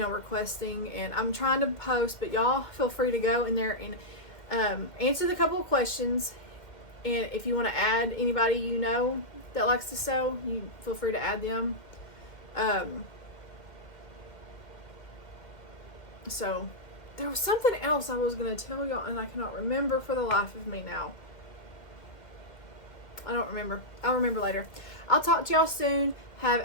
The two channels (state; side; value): late; right; 2.1 ms